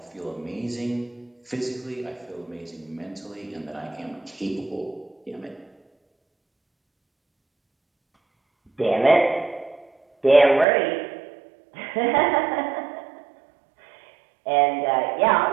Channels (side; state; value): left; drops out; at 10.7 s